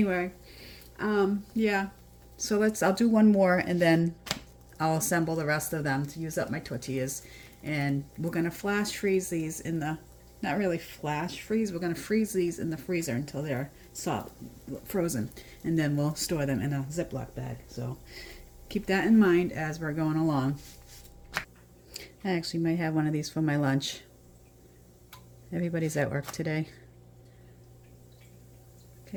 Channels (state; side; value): identical; both; correlation 1.00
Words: yeah. So I'll do one more and then I'll assemble the rest of them to use up my tortillas. And we're gonna flash freeze these in the, not really flash freeze, we're gonna freeze these in the freezer until they're soft, frozen. And then we'll store them in a Ziploc bag. So keep that in mind as we're going along. I actually might have one of these for my lunch. Everybody's at work today.